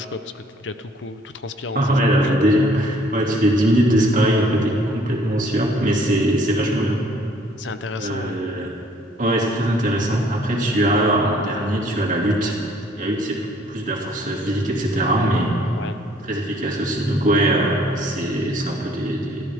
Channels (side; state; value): both; normal; correlation 0.60